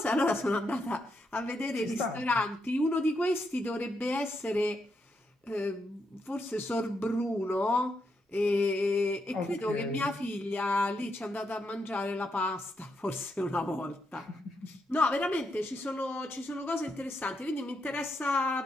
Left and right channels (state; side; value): normal; both; correlation 0.81